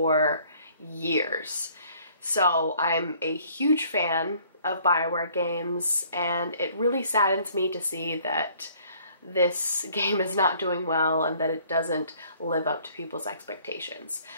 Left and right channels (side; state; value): both; inverted; correlation -0.58